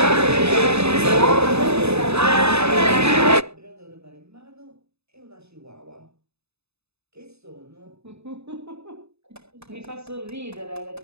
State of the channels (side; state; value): left; late; 0.79 ms